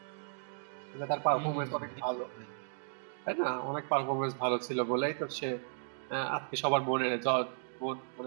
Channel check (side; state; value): left; silent; digital silence